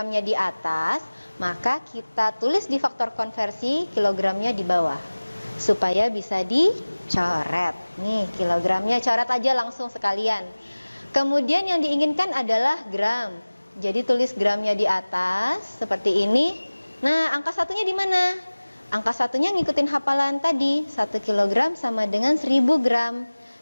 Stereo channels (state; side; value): inverted; both; correlation -1.00